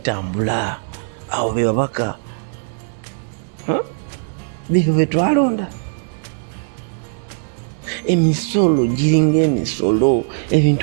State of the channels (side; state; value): left; silent; 58 dB below the other